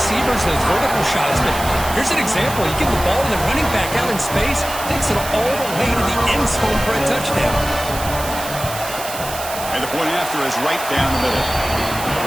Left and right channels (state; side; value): noise; right; hiss, 9 dB below the sound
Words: those vertical shots, but here's an example. You give the ball to the running back out in space, takes it all the way to the end zone for a touchdown. And the point after is right down the middle.